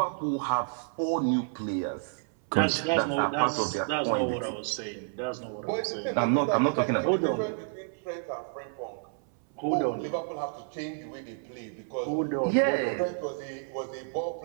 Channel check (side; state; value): left; silent; 58 dB below the other